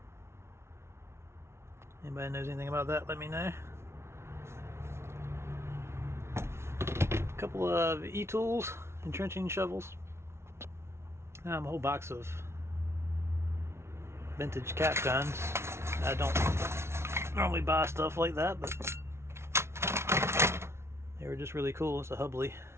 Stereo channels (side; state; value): left; late; 0.13 ms